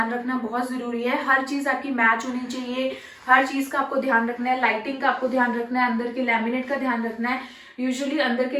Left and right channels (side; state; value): both; identical; correlation 1.00